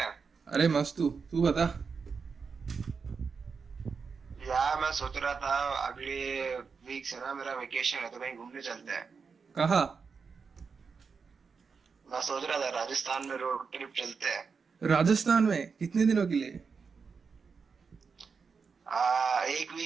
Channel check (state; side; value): quieter; left; 5.4 dB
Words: अरे मस्त। तू तू बता। यार मैं सोच रहा था अगले वीक से ना मेरा वेकेशन है तो कहीं घूमने चलते हैं। कहाँ? मैं सोच रहा था राजस्थान में रोड ट्रिप चलते हैं। राजस्थान में कितने दिनों के लिए? एक